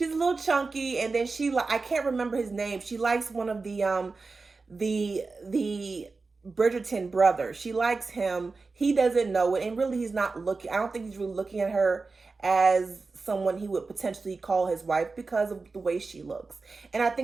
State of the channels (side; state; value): left; quieter; 4.1 dB